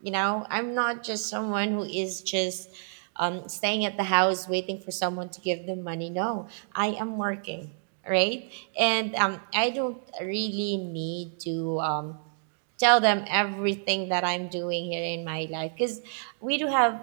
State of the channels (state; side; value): silent; left; digital silence